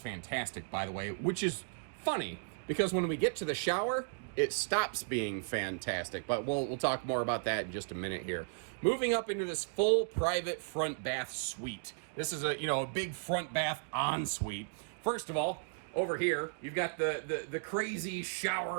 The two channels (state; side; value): silent; left; digital silence